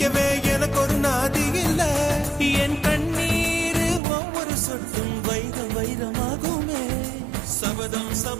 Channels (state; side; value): drops out; left; at 4.0 s